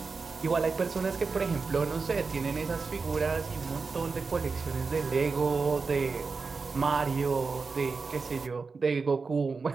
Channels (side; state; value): left; quieter; 4.6 dB